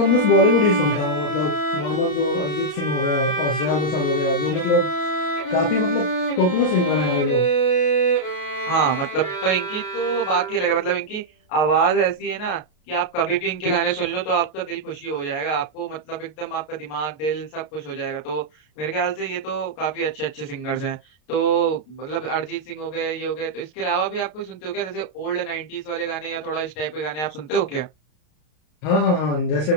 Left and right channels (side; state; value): right; late; 33 ms